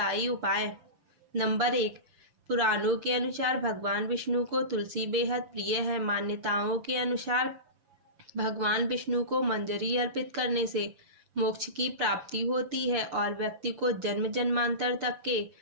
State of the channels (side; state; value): left; late; 5.9 ms